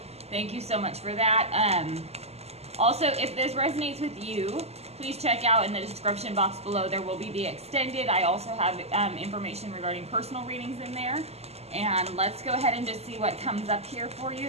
Thank you so much for that. Also, if this resonates with you, please check out in the description box below. There will be the extended. I also have information regarding personal readings in there. And let's go ahead and just see what comes up here for you.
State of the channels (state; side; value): late; left; 0.30 ms